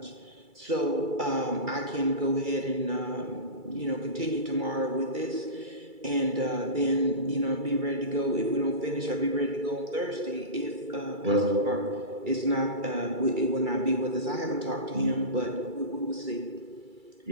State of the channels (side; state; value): left; late; 2.3 ms